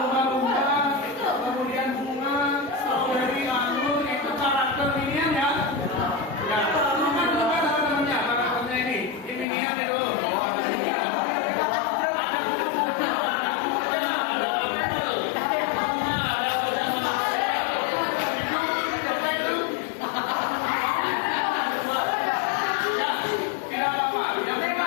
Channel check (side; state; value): right; drops out; at 9.5 s